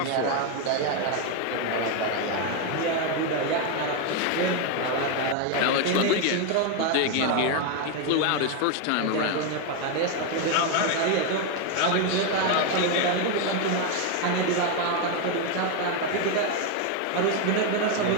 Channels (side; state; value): both; different; correlation 0.02